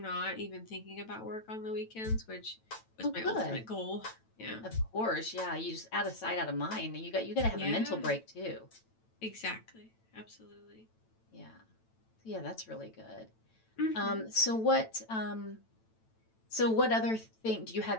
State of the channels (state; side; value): late; right; 9.0 ms